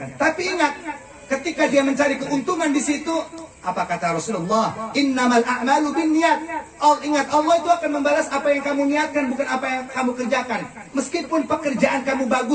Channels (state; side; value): identical; both; correlation 1.00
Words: Tapi ingat, ketika dia mencari keuntungan di situ, apa kata Rasulullah? Innamal a'malu binniyat. Ingat, Allah itu akan membalas apa yang kamu niatkan, bukan apa yang kamu kerjakan. Meskipun pekerjaan kamu